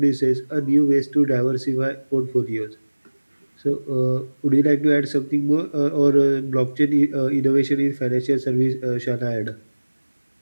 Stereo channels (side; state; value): both; inverted; correlation -1.00